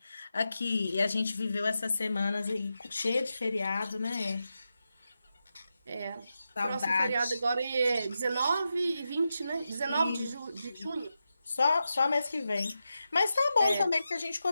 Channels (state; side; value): inverted; both; correlation -0.89